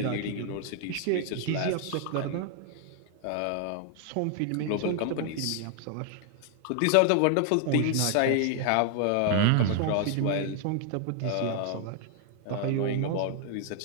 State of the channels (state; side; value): different; both; correlation 0.00